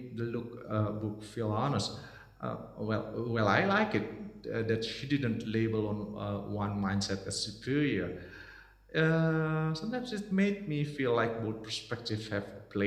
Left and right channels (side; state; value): both; identical; correlation 1.00